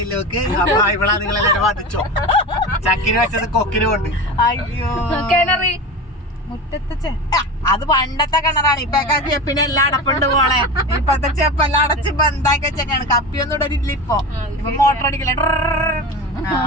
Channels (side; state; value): both; normal; correlation 0.27